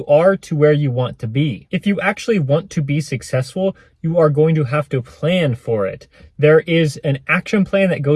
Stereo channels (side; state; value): both; identical; correlation 1.00